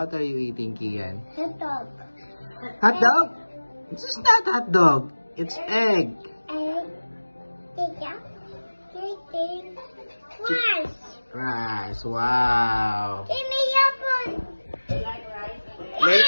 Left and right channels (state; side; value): inverted; both; correlation -1.00